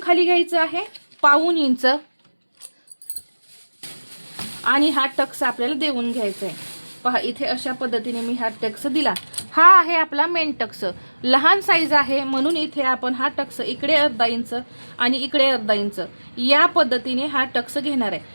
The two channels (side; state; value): both; inverted; correlation -1.00